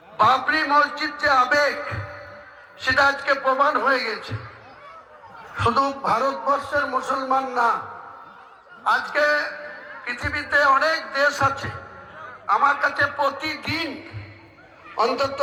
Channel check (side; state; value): both; identical; correlation 1.00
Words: বাবরি মসজিদ যে আবেগ, সেটা আজকে প্রমাণ হয়ে গেছে। শুধু ভারতবর্ষের মুসলমান না, আজকে পৃথিবীতে অনেক দেশ আছে, আমার কাছে প্রতিদিন অন্তত